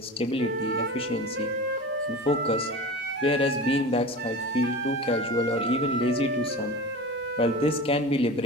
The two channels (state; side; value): normal; both; correlation 0.32